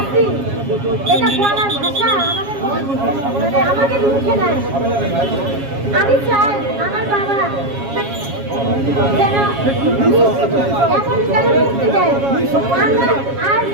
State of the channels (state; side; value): late; left; 7.3 ms